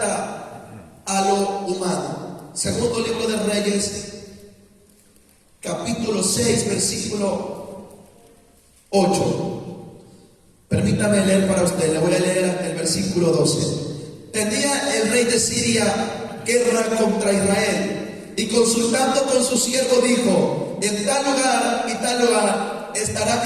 a lo humano. Segundo libro de Reyes, capítulo 6, versículo 8. Permítame leer para usted, le voy a leer el versículo 12. tenía el rey de Siria guerra contra Israel, y consultando con su siervo dijo: en tal lugar y tal lugar estará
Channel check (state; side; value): identical; both; correlation 1.00